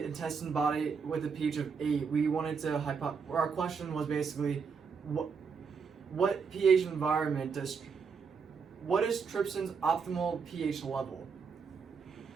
intestine body with a pH of 8, we wanted to our question was basically what pH environment what is trypsin's optimal pH level?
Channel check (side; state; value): left; quieter; 5.7 dB